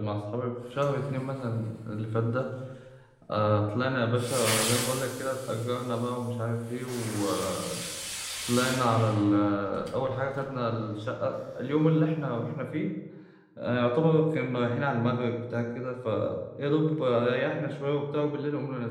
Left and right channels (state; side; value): identical; both; correlation 1.00